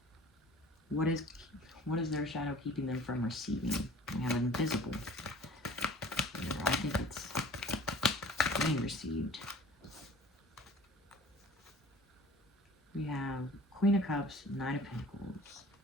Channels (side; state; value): both; normal; correlation 0.47